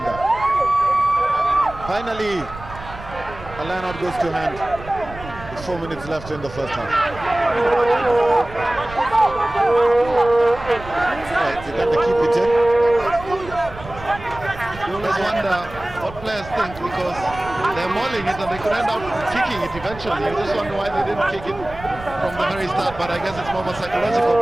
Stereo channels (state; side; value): noise; right; rumble, 15 dB below the sound